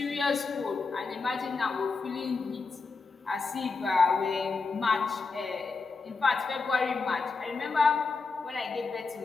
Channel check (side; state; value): right; quieter; 4.3 dB